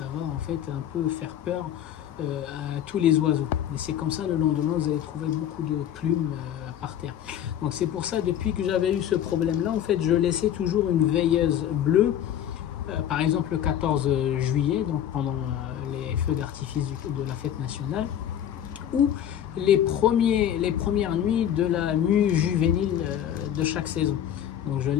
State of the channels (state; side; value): quieter; right; 10.3 dB